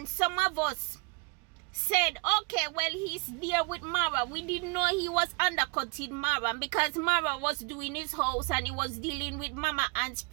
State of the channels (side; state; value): left; quieter; 29.5 dB